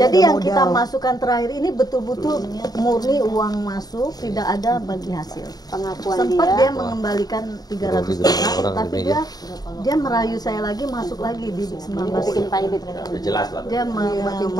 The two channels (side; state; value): right; late; 0.19 ms